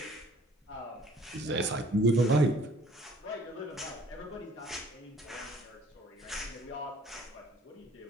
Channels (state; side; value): normal; both; correlation 0.56